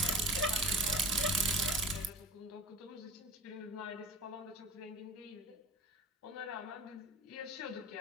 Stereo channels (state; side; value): normal; both; correlation 0.36